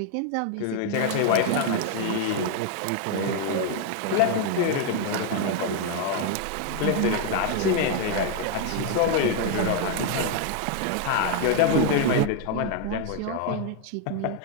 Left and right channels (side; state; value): both; different; correlation 0.01